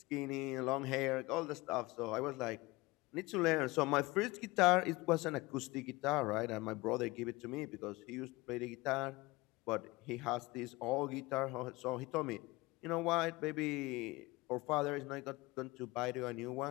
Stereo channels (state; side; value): quieter; right; 22.2 dB